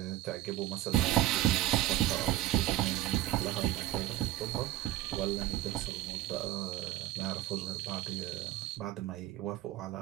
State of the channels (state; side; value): quieter; left; 14.7 dB